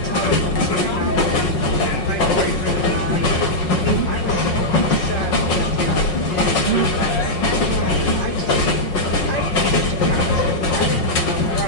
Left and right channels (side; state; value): right; late; 5.5 ms